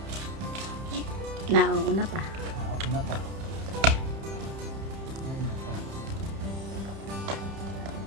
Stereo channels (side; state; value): left; late; 30 ms